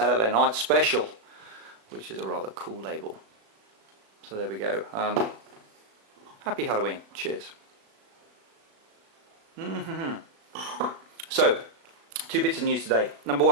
Night Special, which is a rather cool label. So there we go. Happy Halloween. Cheers. So, two bits of news today. Number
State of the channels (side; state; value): left; late; 36 ms